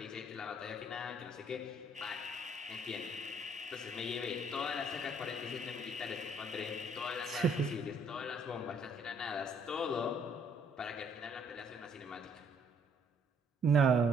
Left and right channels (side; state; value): both; normal; correlation 0.64